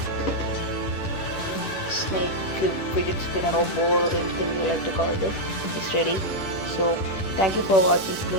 snake cube, fidget spinner or ball or anything you like to call it is ready. So thank you for watching.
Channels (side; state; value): right; late; 10 ms